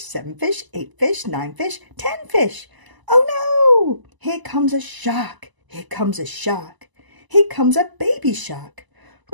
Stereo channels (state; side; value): late; left; 1.0 ms